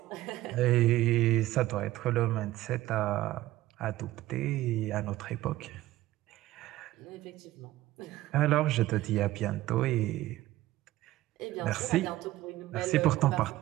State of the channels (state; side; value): quieter; left; 16.1 dB